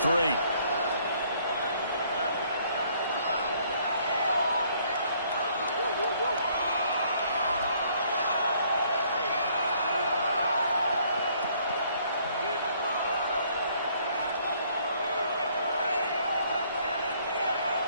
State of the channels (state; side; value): inverted; both; correlation -0.64